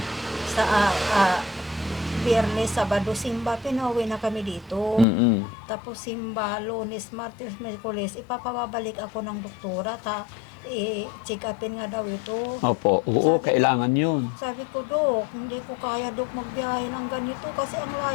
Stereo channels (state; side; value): drops out; right; at 5.1 s